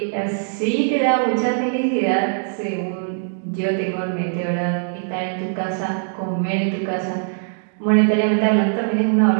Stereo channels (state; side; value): silent; left; digital silence